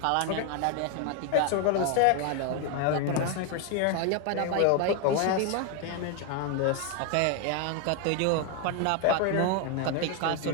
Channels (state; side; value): different; both; correlation 0.01